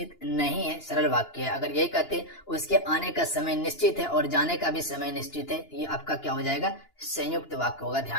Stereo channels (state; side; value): late; right; 2.9 ms